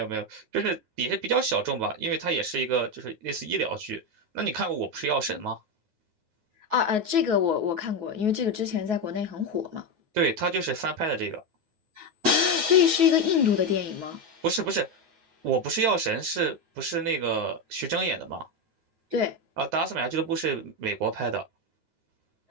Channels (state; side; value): late; left; 9.4 ms